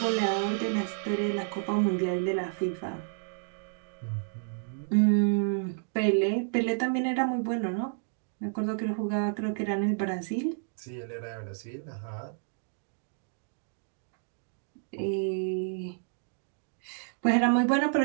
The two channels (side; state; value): left; silent; 57 dB below the other